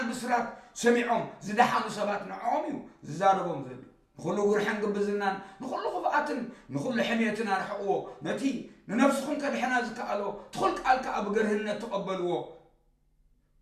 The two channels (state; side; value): identical; both; correlation 1.00